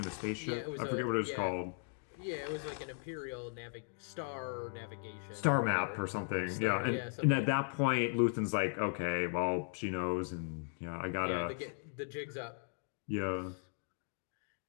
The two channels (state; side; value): silent; right; 53 dB below the other